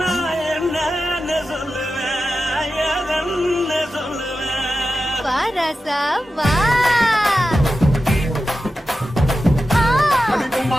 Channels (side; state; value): both; normal; correlation 0.92